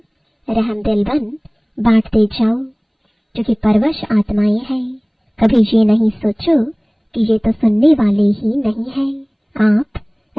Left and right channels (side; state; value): both; identical; correlation 1.00